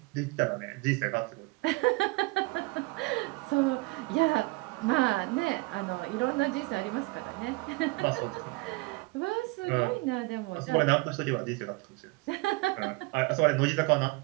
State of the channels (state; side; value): quieter; left; 24.9 dB